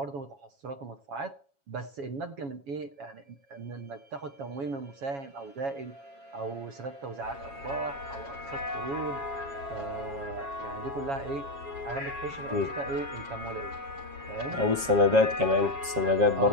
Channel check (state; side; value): late; left; 7.2 ms